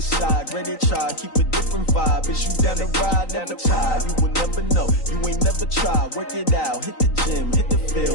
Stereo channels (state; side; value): late; right; 3.9 ms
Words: side. Ready to try, keep a different vibe. Is you down the ride, never tired. You will never know, you ain't never tried. Work it out, hit the gym, hit the